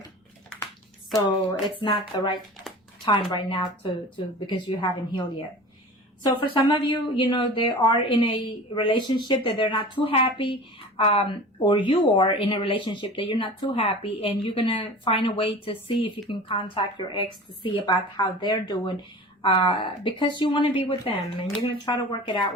So it's not the right time right now to because you haven't healed yet. So for some of you, you know, they are in a relationship that they're not too happy, or you are in a relationship that you're not too happy, and you're going to find a way to see if you can contact your ex to see about how they're doing, because you want to be with them and you're going to try to work it out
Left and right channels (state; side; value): normal; both; correlation 0.37